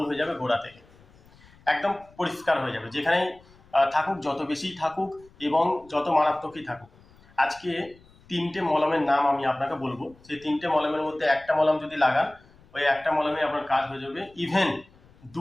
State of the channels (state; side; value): noise; left; rumble, 27 dB below the sound